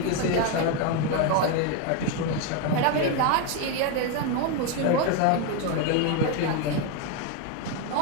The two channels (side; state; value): both; different; correlation 0.02